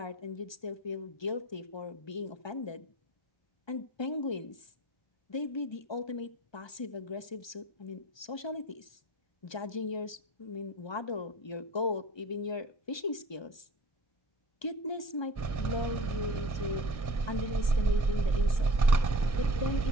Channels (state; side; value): late; right; 1.2 ms